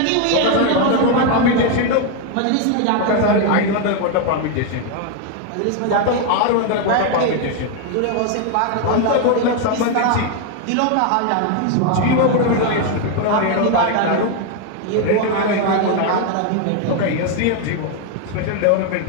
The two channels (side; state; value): both; different; correlation 0.01